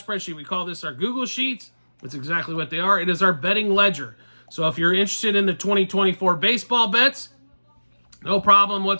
We call this our Google Sheets. That's exactly what they are. It is our betting ledger. So if you're interested in the 2024 baseball bets, no problem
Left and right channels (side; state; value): both; inverted; correlation -1.00